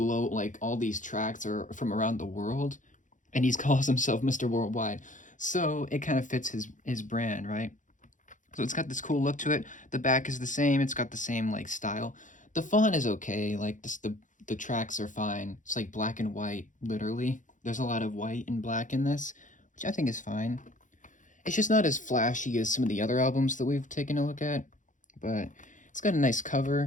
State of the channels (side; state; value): right; late; 0.37 ms